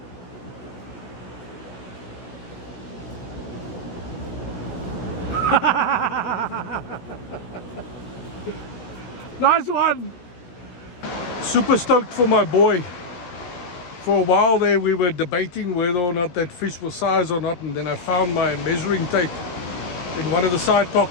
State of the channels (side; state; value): right; late; 17 ms